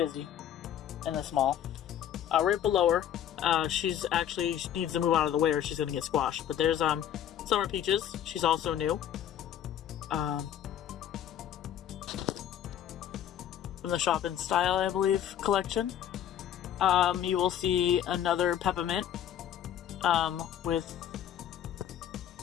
in this mall. Right below her, she needs to move out of the way or she's gonna get squashed. But there's Summer Peaches. She's also new. From the Shoppin' Style, I believe, collection. You will see another Peppermint with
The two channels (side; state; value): right; quieter; 10.4 dB